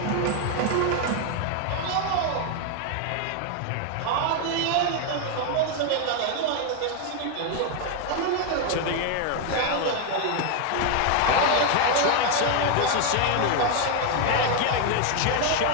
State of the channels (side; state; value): both; different; correlation 0.01